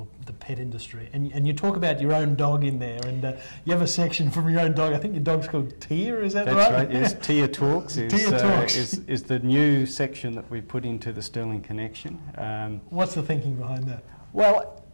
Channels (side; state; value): both; inverted; correlation -1.00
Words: the pet industry. And you talk about your own dog in there, and you have a section from your own dog. I think your dog's called Tia, is that right? That's right, yes. Tia Talks is the new section that we put into the Sterling Connection. What's the thinking behind that? Well,